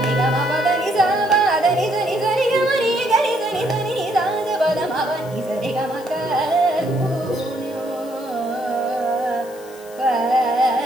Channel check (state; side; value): noise; left; hiss, 22 dB below the sound